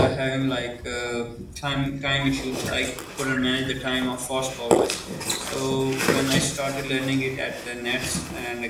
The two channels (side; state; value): both; identical; correlation 1.00